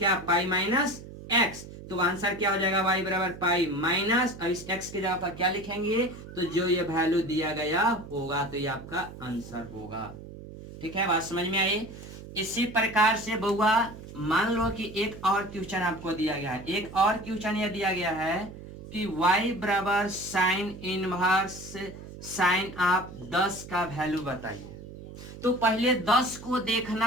पाई माइनस एक्स, तो आंसर क्या हो जाएगा y बराबर पाई माइनस, अब इस x की जगह पर क्या लिखेंगे, तो जो ये वैल्यू दिया गया होगा तो ये आपका आंसर होगा। ठीक है, बात समझ में आई। इसी प्रकार से बउआ मान लो कि एक और क्वेश्चन आपको दिया गया है, एक और क्वेश्चन ये दिया गया है कि y बराबर साइन इनवर्स साइन आप 10 का वैल्यू बताइए। तो पहले 10 को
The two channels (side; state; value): right; noise; hum, 14 dB below the sound